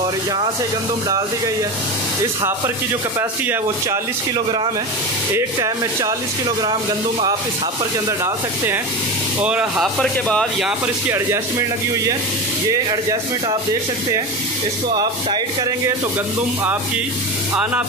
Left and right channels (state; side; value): normal; both; correlation 0.23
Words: यहाँ से गंदम डाल दी गई है। इस हापर की जो कैपेसिटी है वो 40 किलोग्राम है। एक टाइम में 40 किलोग्राम गंदम आप इस हापर के अंदर डाल सकते हैं। और हापर के बाद यहाँ पर इसकी एडजस्टमेंट लगी हुई है। ये एडजस्टमेंट आप देख सकते हैं। इसको आप टाइट करेंगे तो गंदम आपकी आना